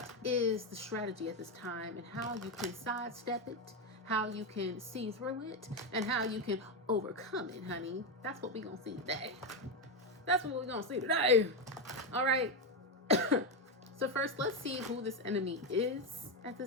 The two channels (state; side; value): normal; both; correlation 0.08